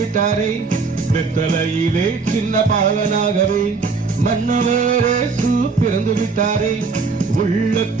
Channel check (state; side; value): quieter; left; 4.6 dB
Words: வெத்தலையிலே சின்ன பாலனாகவே மன்னவரே பிறந்து விட்டாரே.